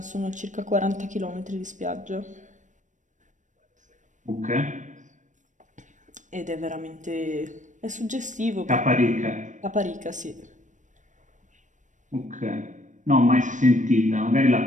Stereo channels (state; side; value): late; left; 0.36 ms